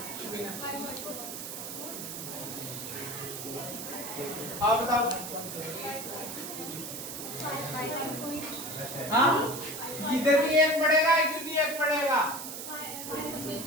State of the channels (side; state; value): right; noise; hiss, 8 dB below the sound